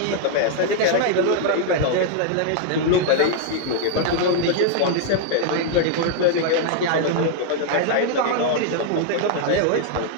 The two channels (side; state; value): both; different; correlation 0.00